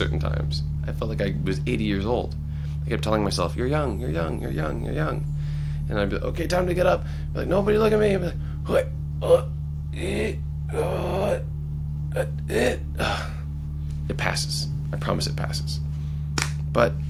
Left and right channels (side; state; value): both; identical; correlation 1.00